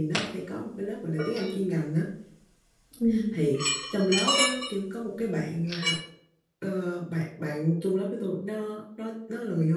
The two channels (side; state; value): both; identical; correlation 1.00